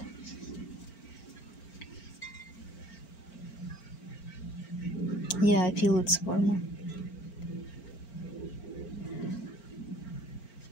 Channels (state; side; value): late; right; 4.4 ms